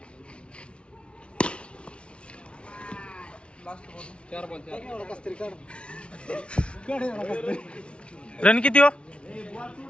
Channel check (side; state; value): right; late; 0.059 ms